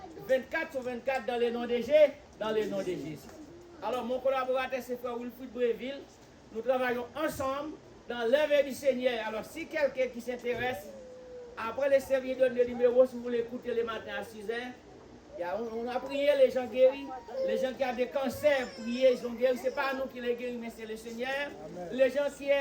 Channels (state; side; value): identical; both; correlation 1.00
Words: 24 sur 24 dans les noms de Jésus. Alors, mon collaborateur, c'est Frère Wilfried Bréville. Nous travaillons ensemble dans l'œuvre du Seigneur. Alors, si quelqu'un qui s'intéresse, après le service donne le numéro, si vous voulez écouter le matin à 6h, on a prié, les gens guéris. Les gens qui ont des cancers, priés, ils sont guéris. Ce n'est pas nous qui les guérissons, mais c'est le Seigneur. Amen. Les gens qui,